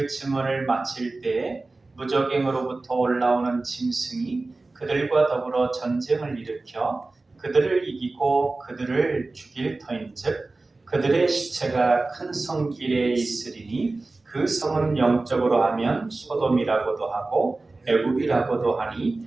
증언을 마칠 때에 무적행으로부터 올라오는 짐승이 그들과 더불어 전쟁을 일으켜 그들을 이기고 그들을 죽일 터인즉 그들의 시체가 큰 성길에 있으리니 그 성은 영적으로 하면 소돔이라고도 하고 애굽이라고도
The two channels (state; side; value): quieter; left; 3.3 dB